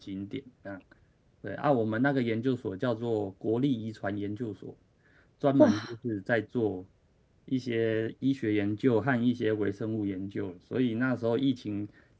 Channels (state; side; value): identical; both; correlation 1.00